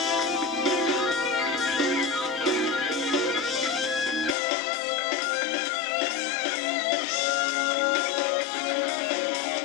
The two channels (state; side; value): drops out; right; at 4.4 s